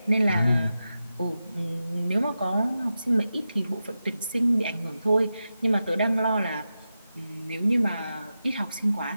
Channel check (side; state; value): both; inverted; correlation -0.91